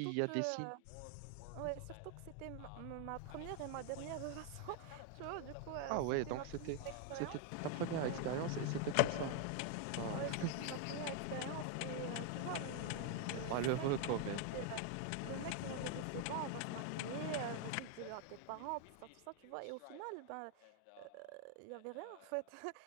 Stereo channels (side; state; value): both; different; correlation 0.01